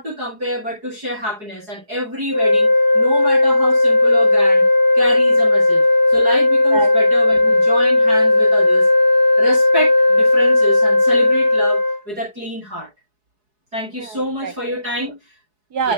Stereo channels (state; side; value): late; left; 4.7 ms